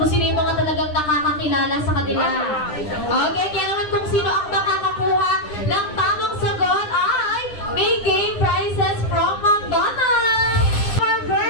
sino yung mga talagang nakakakilala sa kanila. Okay, kaya naman kung sino ang makakakuha ng tamang sagot ay may game prizes from McDonald's. Our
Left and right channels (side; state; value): right; late; 9.8 ms